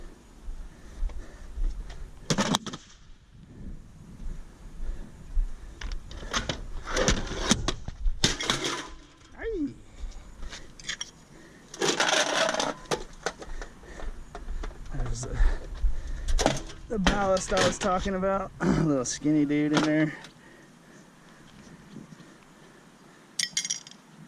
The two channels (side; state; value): both; identical; correlation 1.00